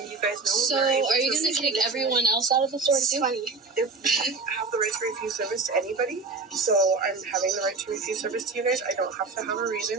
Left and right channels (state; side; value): quieter; left; 4.1 dB